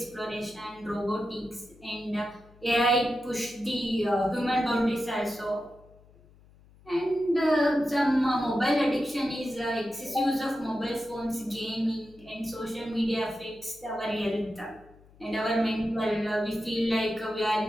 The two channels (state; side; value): noise; left; hum, 26 dB below the sound